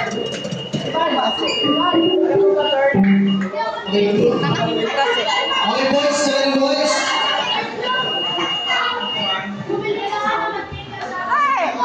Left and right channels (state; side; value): identical; both; correlation 1.00